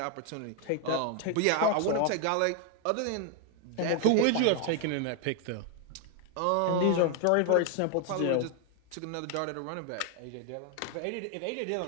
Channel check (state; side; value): different; both; correlation 0.01